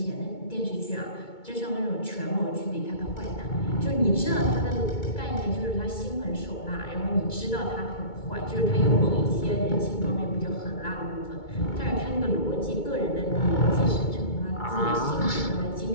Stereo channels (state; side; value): late; right; 2.2 ms